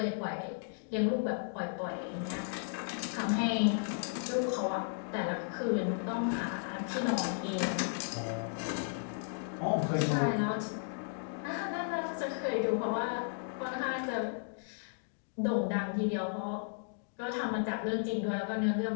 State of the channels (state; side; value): silent; right; digital silence